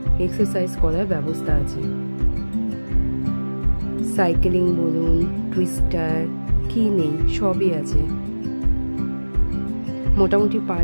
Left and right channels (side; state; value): both; inverted; correlation -1.00